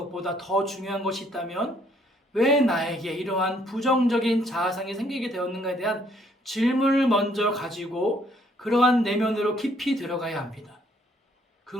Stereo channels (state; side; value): normal; both; correlation 0.66